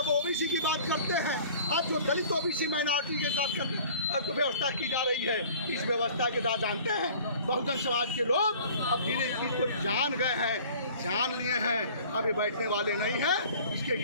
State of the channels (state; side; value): inverted; both; correlation -0.48